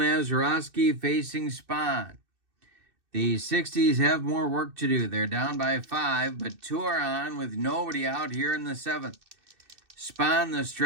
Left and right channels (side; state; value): left; late; 2.6 ms